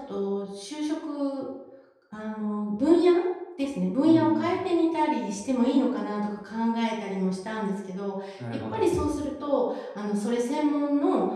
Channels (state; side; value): identical; both; correlation 1.00